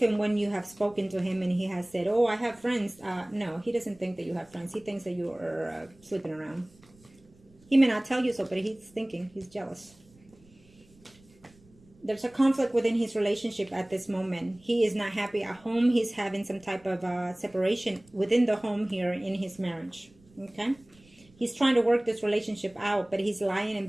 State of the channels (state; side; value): noise; right; rumble, 28 dB below the sound